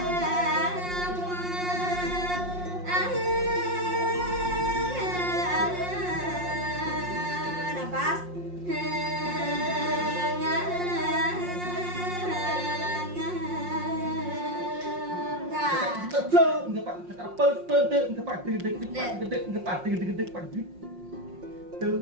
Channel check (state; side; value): late; left; 5.6 ms